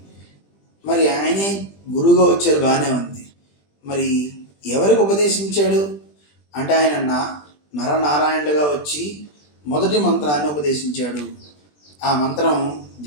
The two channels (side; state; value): right; late; 20 ms